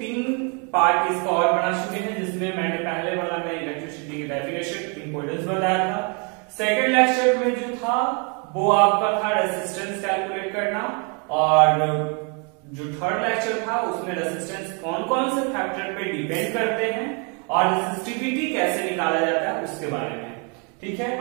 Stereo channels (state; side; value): quieter; left; 35.6 dB